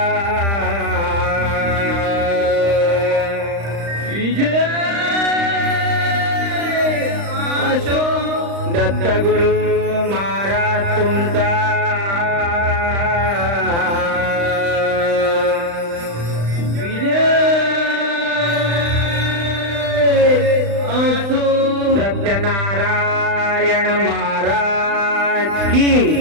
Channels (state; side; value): late; left; 35 ms